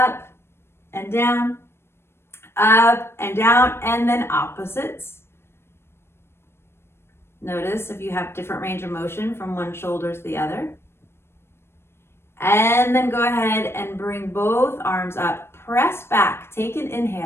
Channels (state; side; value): late; right; 0.12 ms